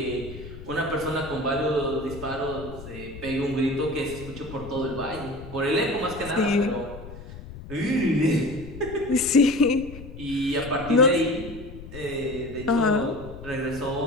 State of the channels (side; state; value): left; noise; rumble, 14 dB below the sound